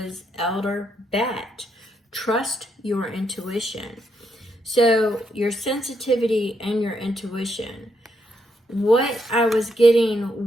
Elder Bat. Trust your intuition. So your sensitivity and your intuition. What I was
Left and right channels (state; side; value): normal; both; correlation 0.78